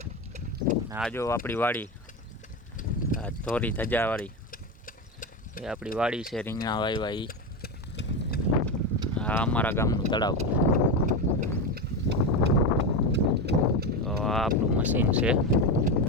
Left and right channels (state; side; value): normal; both; correlation 0.16